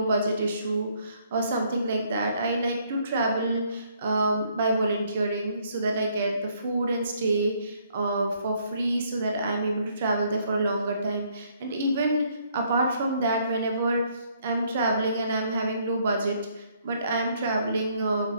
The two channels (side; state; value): both; inverted; correlation -0.67